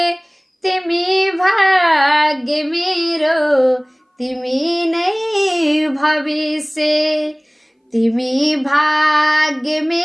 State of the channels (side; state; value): both; identical; correlation 1.00